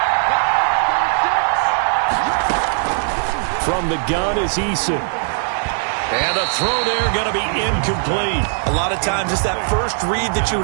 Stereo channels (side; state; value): left; silent; digital silence